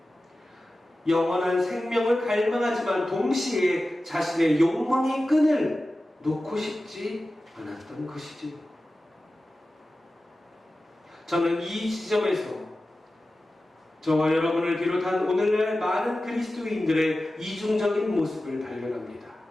영원한 생명을 갈망하지만 동시에 자신의 욕망의 끈을 놓고 싶지 않았던 것이지요. 저는 이 지점에서 저와 여러분을 비롯한 오늘날 많은 그리스도인들의 이중적인 모습을 발견합니다.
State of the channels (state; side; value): normal; both; correlation 0.95